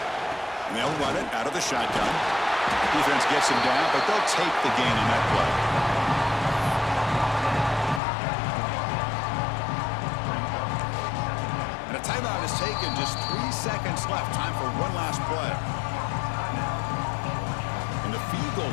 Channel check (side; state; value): right; drops out; at 8.0 s